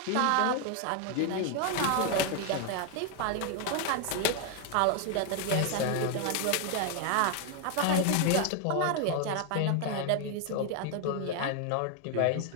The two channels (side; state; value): both; different; correlation 0.00